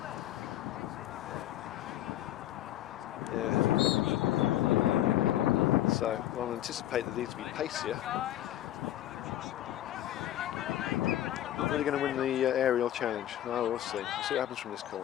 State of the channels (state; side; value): quieter; right; 13.0 dB